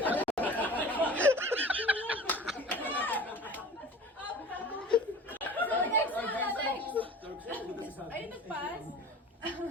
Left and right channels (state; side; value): normal; both; correlation 0.40